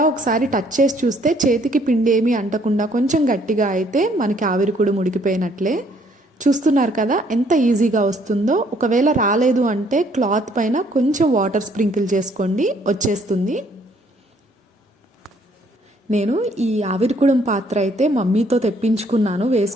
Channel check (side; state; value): both; normal; correlation 0.64